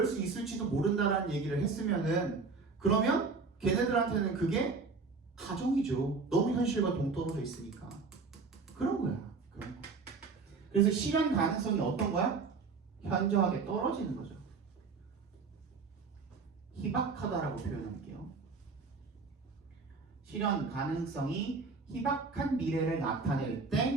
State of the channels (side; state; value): left; quieter; 4.5 dB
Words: 수 있을지도 모른다라는 얘기를 했으면은, 그러면 걔네들한테는 그게 가정이죠. 너무 현실과 동떨어져 있으니까. 그런 거야. 그런 거. 그래서 실현 가능성이 어떤 거야? 현저하게 떨어지는 거죠. 희박하다라고 표현할게요. 실현 가능성이 희박한 미래를 나타낼